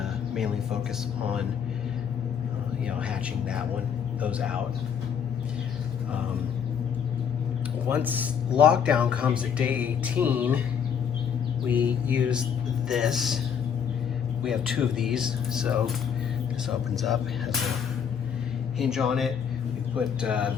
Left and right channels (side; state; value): right; quieter; 7.6 dB